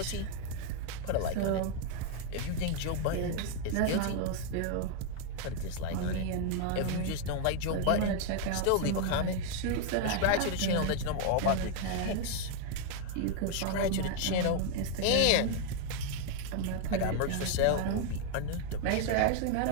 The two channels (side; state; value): both; different; correlation 0.00